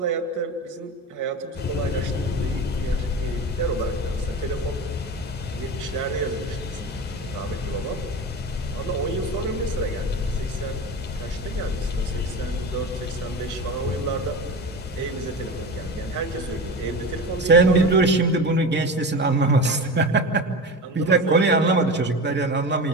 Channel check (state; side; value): normal; both; correlation 0.27